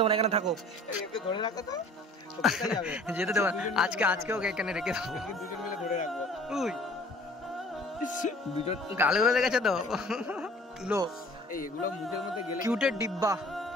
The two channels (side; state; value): both; normal; correlation 0.50